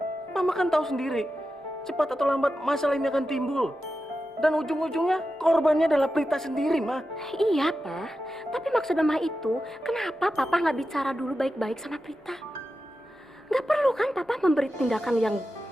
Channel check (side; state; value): both; normal; correlation 0.91